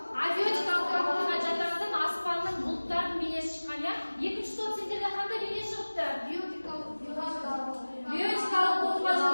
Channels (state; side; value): inverted; both; correlation -1.00